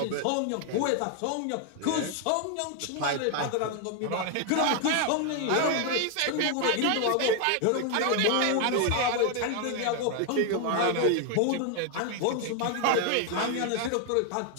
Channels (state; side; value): different; both; correlation 0.01